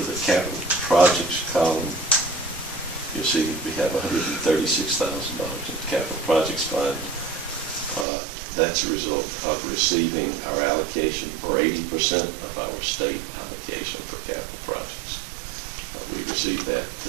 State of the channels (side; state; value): left; drops out; at 8.1 s